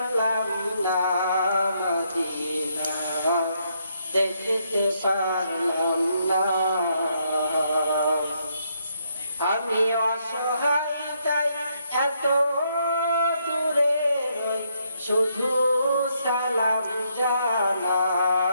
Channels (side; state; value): both; inverted; correlation -0.75